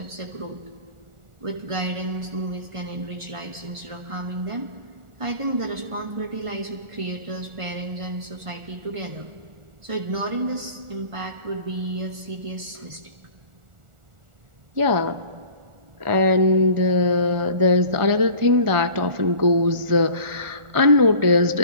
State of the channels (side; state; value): left; late; 1.4 ms